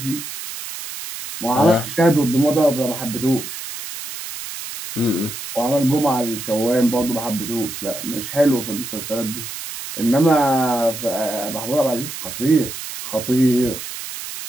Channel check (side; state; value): right; noise; hiss, 9 dB below the sound